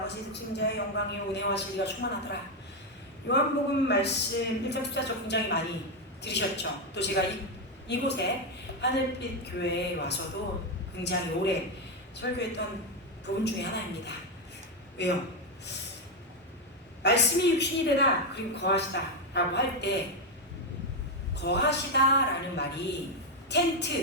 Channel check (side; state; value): both; normal; correlation 0.05